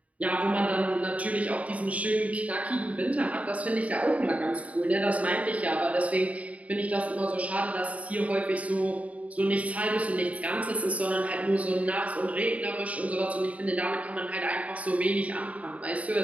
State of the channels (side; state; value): left; late; 0.068 ms